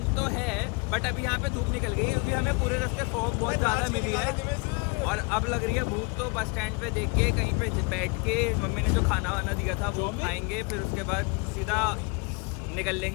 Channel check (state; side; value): quieter; right; 31.2 dB